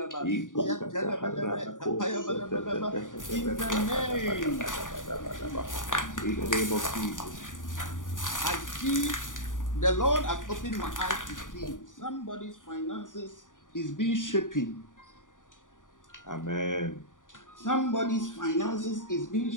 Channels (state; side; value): late; right; 0.88 ms